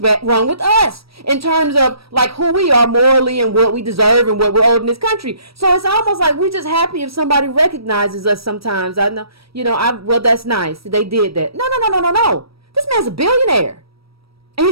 with us in terms of like who we are morally and what we deserve and what we're owed in this country. So it's almost like we're just happy if somebody recognizes us. Sometimes I know, well, that's nice. They did that. No. This man's a billionaire, and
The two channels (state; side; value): late; left; 0.76 ms